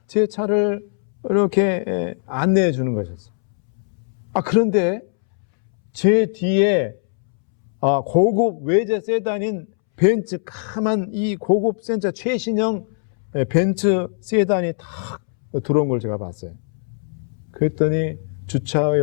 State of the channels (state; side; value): silent; right; 65 dB below the other